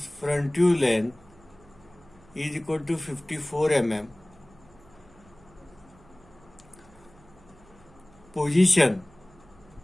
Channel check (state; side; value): noise; right; hum, 25 dB below the sound